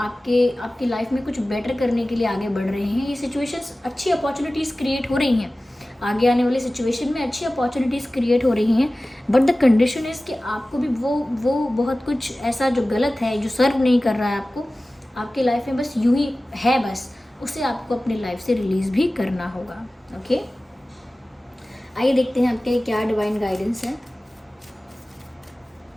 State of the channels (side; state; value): both; normal; correlation 0.97